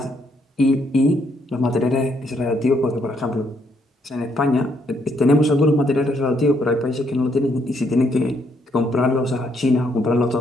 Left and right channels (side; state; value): both; normal; correlation 0.73